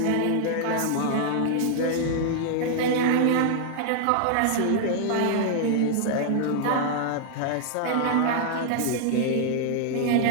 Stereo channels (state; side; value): different; both; correlation 0.00